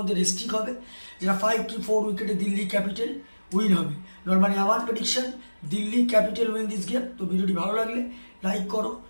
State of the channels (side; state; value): both; inverted; correlation -1.00